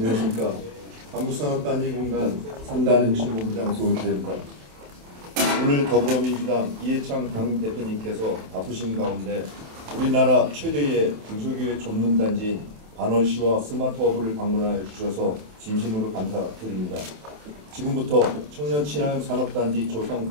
한국산업단지공단 첨단혁신본부장 조성태입니다. 오늘 더불어민주당 이해찬 당 대표님께서 바쁘신 가운데 우리나라 최대의 중소기업 전문단지인 반월시와 스마트허브를 방문하여 주셔서 진심으로 감사드립니다. 지금부터 청년 친화형 산업단지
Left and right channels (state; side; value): late; left; 27 ms